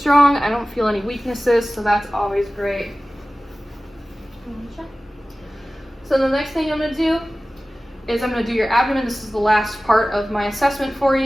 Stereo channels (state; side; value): normal; both; correlation 0.97